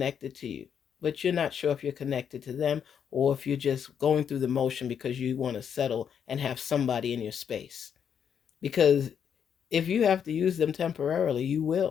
to you, but you're not sure if you're connected to them or if you're just going through the motion because you want to settle and have somebody in your space. Because if you have to use them temporarily, you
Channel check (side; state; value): right; quieter; 7.9 dB